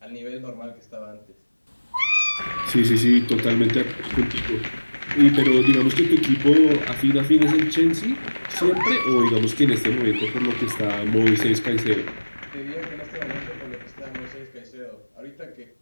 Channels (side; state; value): both; inverted; correlation -1.00